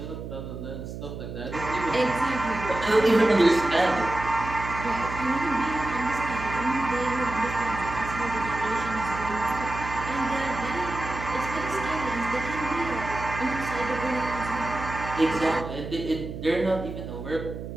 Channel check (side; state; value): right; noise; hum, 9 dB below the sound